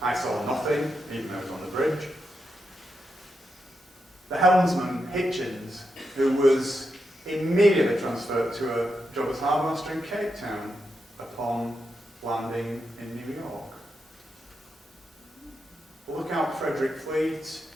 "I saw nothing," even though he was on the bridge. The helmsman, Hitchens, who was immediately transferred to a job as harbour master in Cape Town upon landing in New York. Lookout Frederick Fleet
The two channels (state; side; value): normal; both; correlation 0.85